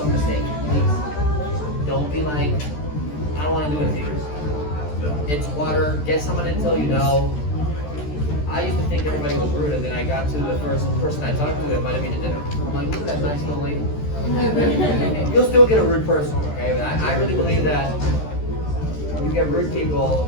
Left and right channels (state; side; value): late; right; 13 ms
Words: mistakes, please. Don't be like, I don't want to do anything. It's water. Get someone to tell you no. I used to think everybody was rude, and then I got to the first person I talked to that invited me to dinner. I'm like, look at that nice little lady. You'll still get a rude person, okay? But I really believe that you get rude people